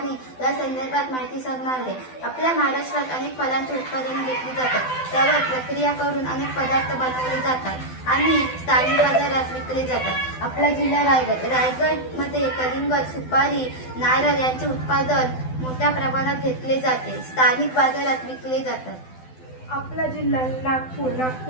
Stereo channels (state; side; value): late; right; 12 ms